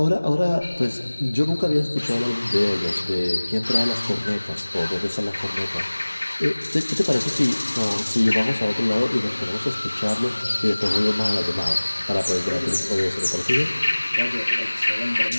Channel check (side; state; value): both; inverted; correlation -1.00